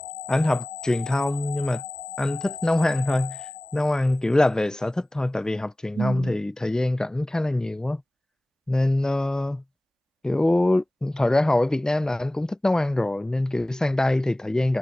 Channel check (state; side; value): normal; both; correlation 0.98